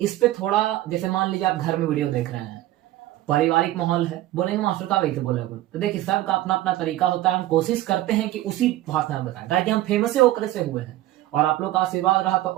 इस पे थोड़ा, जैसे मान लीजिए आप घर में वीडियो देख रहे हैं, पारिवारिक माहौल है, बोलेंगे मास्टर का वैसे बोला, तो देखिए सबका अपना अपना तरीका होता है। हम कोशिश करते हैं कि उसी भाषा में बताएं, ताकि हम फेमस होकर से हुए हैं और आप लोग का आशीर्वाद रहा तो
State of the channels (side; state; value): left; quieter; 15.4 dB